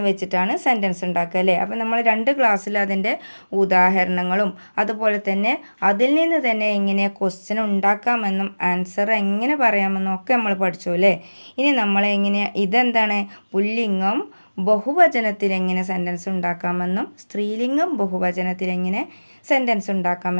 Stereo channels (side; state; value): both; inverted; correlation -1.00